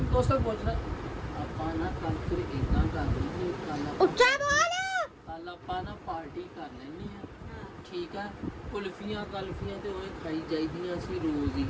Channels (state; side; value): identical; both; correlation 1.00